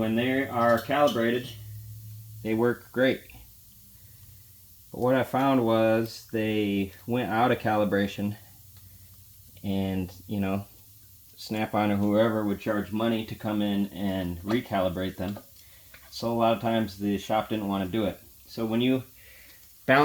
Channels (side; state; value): both; identical; correlation 1.00